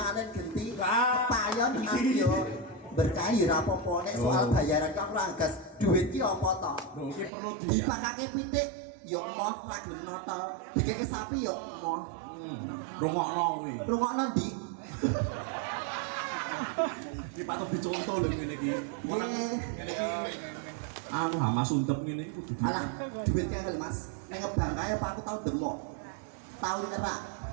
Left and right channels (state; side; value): drops out; left; at 7.3 s